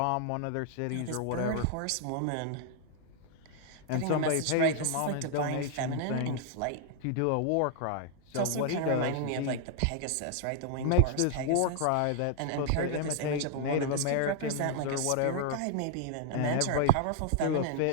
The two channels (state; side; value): different; both; correlation 0.00